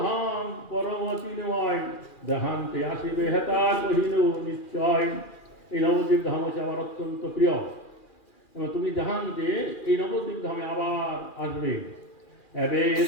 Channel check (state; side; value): late; right; 2.4 ms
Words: ধাম পরম চিন্ময়, দেহান্তে আসিবে হেতা কহিল নিশ্চয়। এই নবদ্বীপ ধাম হচ্ছে আমার অত্যন্ত প্রিয়, এবং তুমি দেহান্তে এই নবদ্বীপ ধামে আবার আসবে। এবে